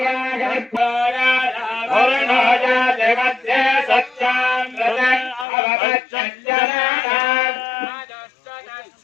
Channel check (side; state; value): right; drops out; at 5.5 s